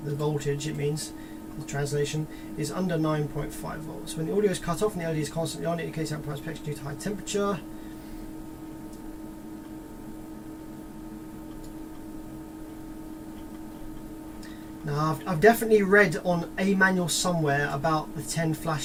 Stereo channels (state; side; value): identical; both; correlation 1.00